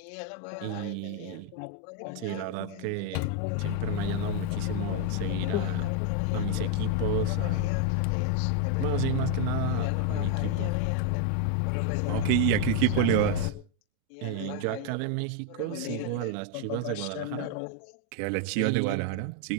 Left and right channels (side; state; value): both; different; correlation 0.01